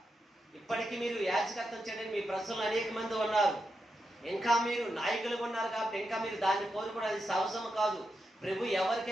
ఇప్పటికీ మీరు యాజకత్వం చేయడానికి మీ ప్రజలు అనేక మంది ఉన్నారు, ఇంకా మీరు నాయకులు ఉన్నారు కాబట్టి ఇంకా మీరు దాన్ని కోరుకోవడం అది సహజము కాదు. ప్రభు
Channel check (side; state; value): both; normal; correlation 0.86